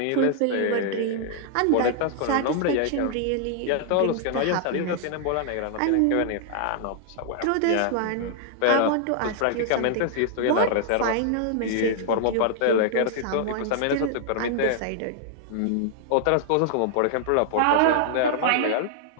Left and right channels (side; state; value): both; different; correlation -0.01